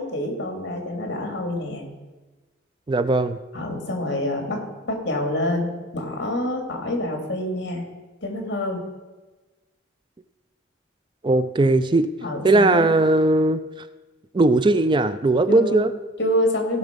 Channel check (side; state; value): both; normal; correlation 0.49